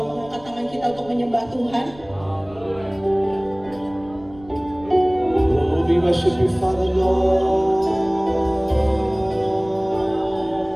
mengangkat tangan kita untuk menyembah Tuhan. Oh, we worship you, Father Lord.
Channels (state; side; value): noise; right; rumble, 22 dB below the sound